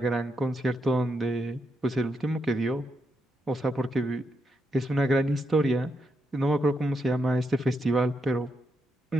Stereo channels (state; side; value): normal; both; correlation 0.82